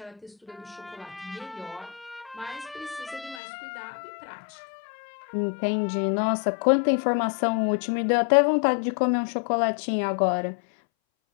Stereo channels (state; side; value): drops out; right; at 3.4 s